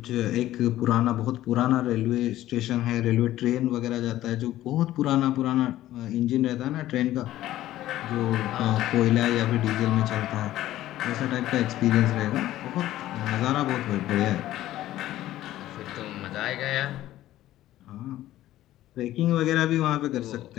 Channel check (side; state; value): right; quieter; 14.3 dB